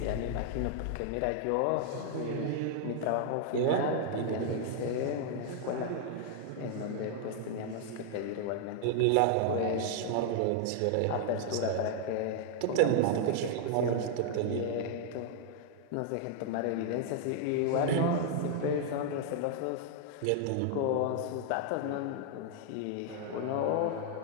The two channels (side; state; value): both; different; correlation 0.00